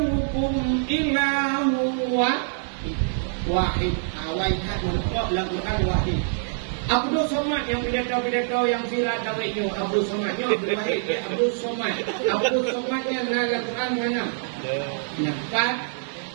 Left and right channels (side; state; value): left; silent; digital silence